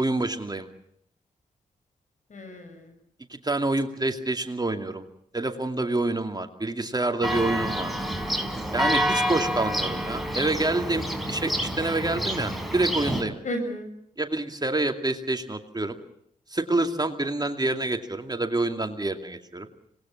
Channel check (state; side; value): normal; both; correlation 0.67